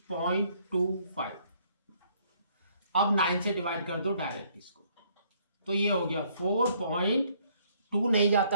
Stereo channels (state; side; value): inverted; both; correlation -0.65